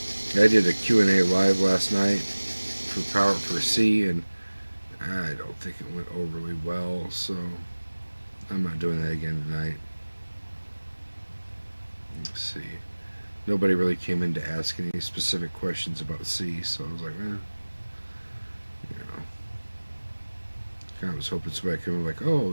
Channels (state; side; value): inverted; both; correlation -1.00